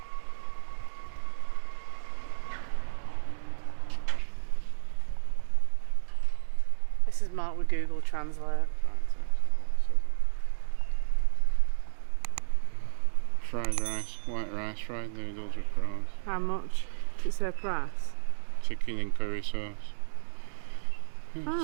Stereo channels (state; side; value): silent; left; digital silence